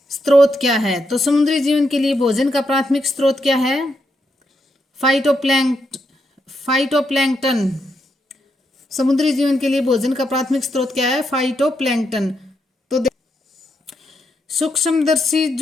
स्रोत क्या है? तो समुद्री जीवन के लिए भोजन का प्राथमिक स्रोत क्या है? फाइटोप्लैंक्टन। समुद्री जीवन के लिए भोजन का प्राथमिक स्रोत क्या है? फाइटोप्लैंक्टन। तो सूक्ष्मदर्शी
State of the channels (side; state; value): both; normal; correlation 0.81